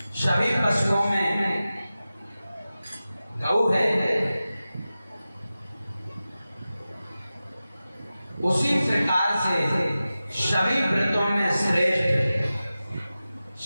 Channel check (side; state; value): both; inverted; correlation -0.95